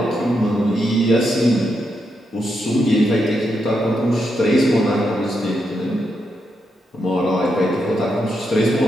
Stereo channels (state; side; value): normal; both; correlation 0.82